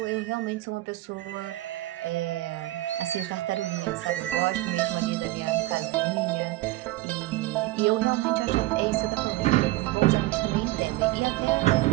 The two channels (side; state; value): left; quieter; 18.0 dB